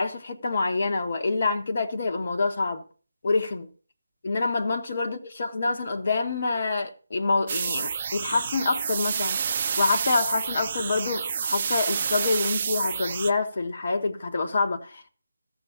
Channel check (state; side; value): inverted; both; correlation -0.84